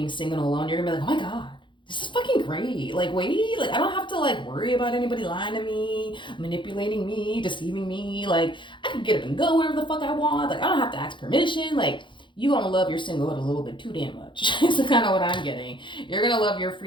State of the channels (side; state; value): right; late; 0.23 ms